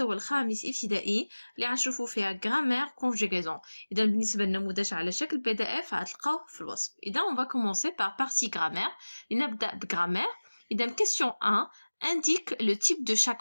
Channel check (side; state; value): both; inverted; correlation -1.00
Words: الخامس ابتدائي اللي غنشوفو فيها غرامير كونجيغيزون. إذا بالنسبة للنموذج على شكل PDF غتلقاوه في الوصف. إذا on va commencer par partie grammaire. لنبدأ بغرامير. إذا question 1 indique le type de